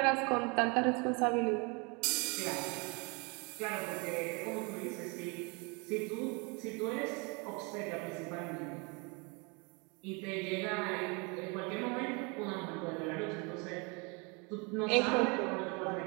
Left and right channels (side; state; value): left; quieter; 30.8 dB